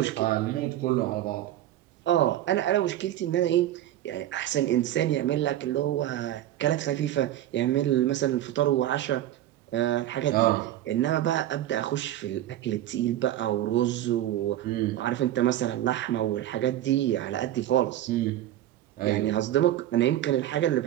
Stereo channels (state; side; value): quieter; left; 13.0 dB